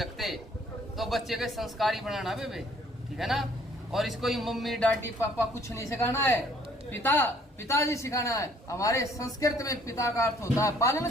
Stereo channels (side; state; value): both; normal; correlation 0.60